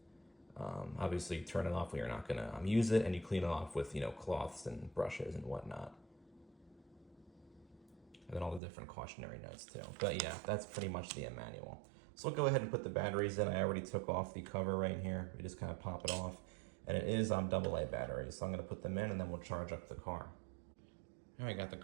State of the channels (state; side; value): drops out; left; at 8.6 s